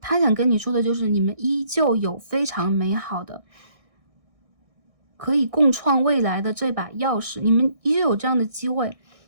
想跟你说的就是你们依旧有非常美好的可以共创未来的这把钥匙，你们依旧有这样的机会。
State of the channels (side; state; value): left; late; 1.6 ms